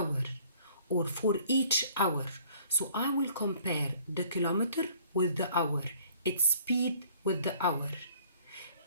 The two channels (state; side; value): inverted; both; correlation -0.56